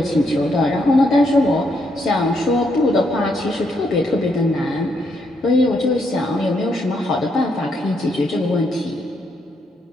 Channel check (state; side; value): normal; both; correlation 0.76